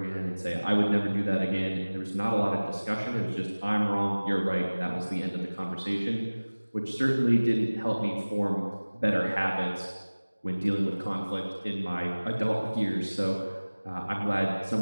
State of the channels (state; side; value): inverted; both; correlation -1.00